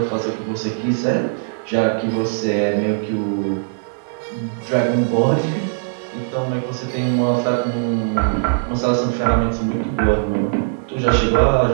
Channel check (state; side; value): silent; left; 58 dB below the other